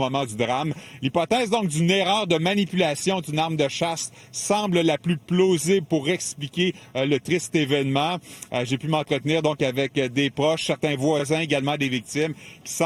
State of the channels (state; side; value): identical; both; correlation 1.00